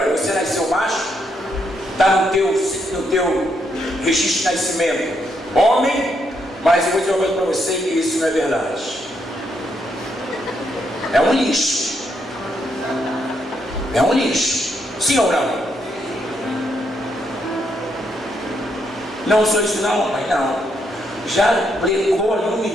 você nasceu macho, está no teu registro de nascimento homem, mas eu vou dizer uma coisa para você, que isso não é verdade. É um lixo. É um lixo. Sim ou não? Não sou isso não, mas não. Já pregou ali o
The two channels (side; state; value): both; normal; correlation 0.77